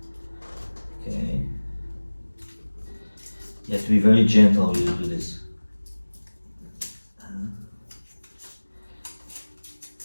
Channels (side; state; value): both; inverted; correlation -1.00